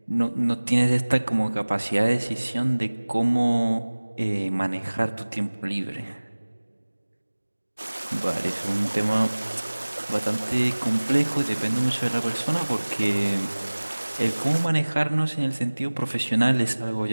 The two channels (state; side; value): inverted; both; correlation -1.00